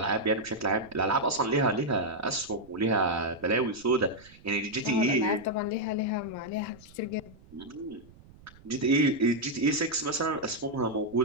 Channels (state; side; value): noise; right; rumble, 23 dB below the sound